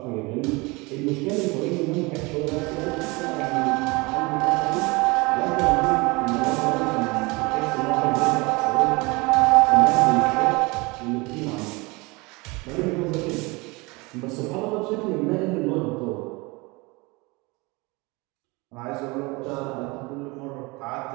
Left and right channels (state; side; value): quieter; left; 25.4 dB